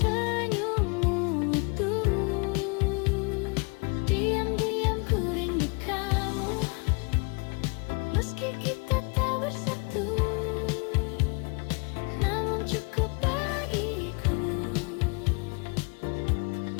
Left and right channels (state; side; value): quieter; right; 32.0 dB